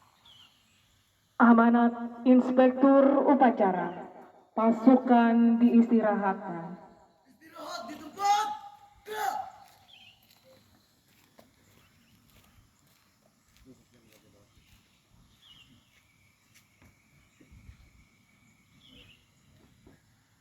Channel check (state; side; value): identical; both; correlation 1.00